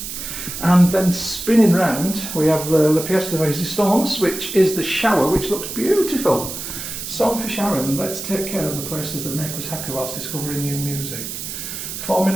And then spinning round, we have the pièce de résistance, which is the shower, which looks beautiful. Song for Sharon, let's take care of the places that make us happy whilst discovering new music.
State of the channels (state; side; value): noise; right; hiss, 7 dB below the sound